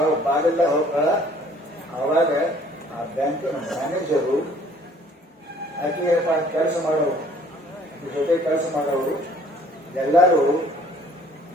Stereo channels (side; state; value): both; normal; correlation 0.56